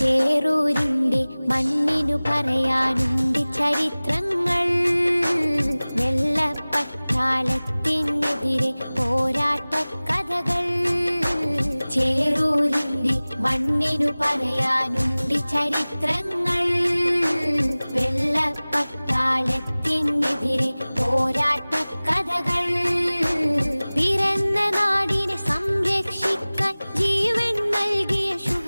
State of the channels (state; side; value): inverted; both; correlation -0.99